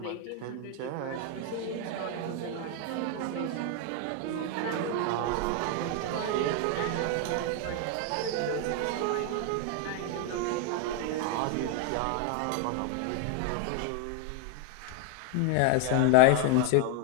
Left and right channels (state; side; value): different; both; correlation 0.01